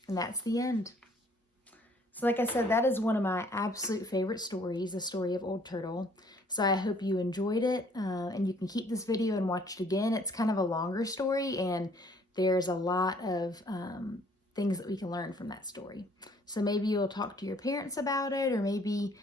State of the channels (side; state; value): both; normal; correlation 0.60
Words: And that's the end. So like I said, that is one of my absolute favorite stories, the story of Old Turtle. So I hope you enjoyed it, and you can keep this video and watch it again. It's kind of a longer story, and there's a lot of things that we can learn from that story. So maybe you'll talk to your parents about it, or maybe